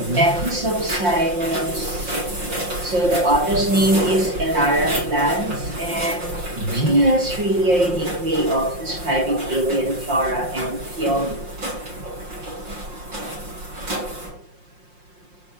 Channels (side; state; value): left; late; 5.6 ms